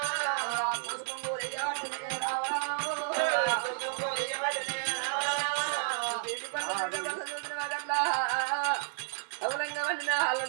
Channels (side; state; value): left; silent; 57 dB below the other